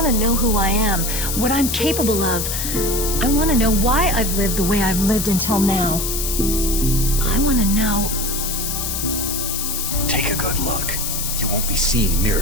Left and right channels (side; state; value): left; noise; hiss, 2 dB below the sound